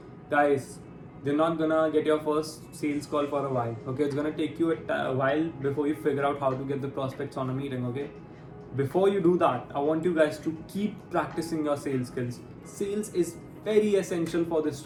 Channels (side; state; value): both; identical; correlation 1.00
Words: guys, you're not gonna get your first sales call for a while. Okay, it's gonna take you a while before you figure out how to get the prospects on a meeting. Okay, before you do that, I want you guys to keep practicing your sales skills. Sales is very essential for this